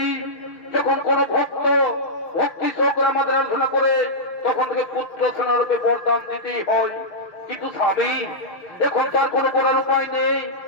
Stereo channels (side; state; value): right; late; 5.7 ms